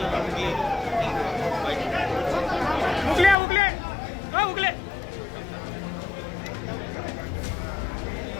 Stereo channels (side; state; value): right; drops out; at 3.4 s